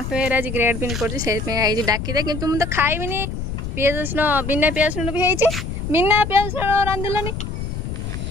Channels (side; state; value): left; noise; rumble, 5 dB below the sound